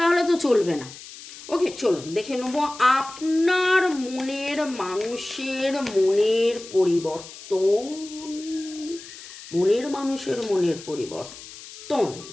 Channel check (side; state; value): left; noise; hiss, 16 dB below the sound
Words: তো চলবে না। ওকে, চলুন দেখে নেব আপনার মনের মানুষের মনের পরিবর্তন। মনের মানুষের মনের পরিবর্তন,